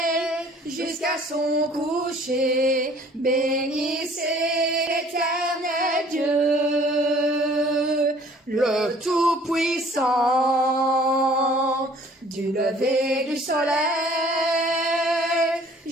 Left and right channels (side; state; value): both; normal; correlation 0.54